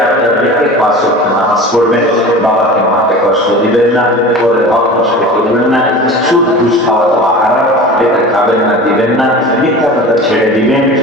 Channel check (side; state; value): both; normal; correlation 0.36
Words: আপনার দেখে 5 ওয়াক্ত নামাজ পড়বেন, বাবাকে মাকে কষ্ট দিবেন না, পরে হক নষ্ট করবেন না, সুদ ঘুষ খাওয়া দাওয়া হারাম, এটা খাবেন না, দিবেন না, মিথ্যা কথা ছেড়ে দিবেন।